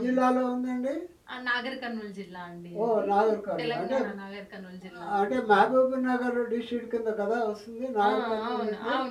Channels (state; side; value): identical; both; correlation 1.00